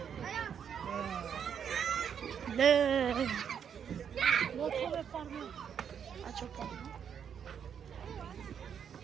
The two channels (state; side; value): quieter; left; 7.9 dB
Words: Nej. Låt honom farma. Aç o parmağı.